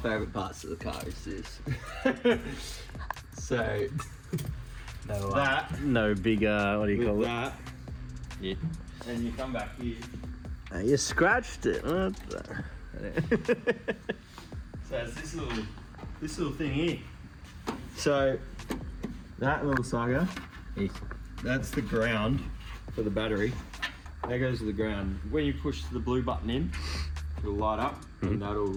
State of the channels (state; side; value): identical; both; correlation 1.00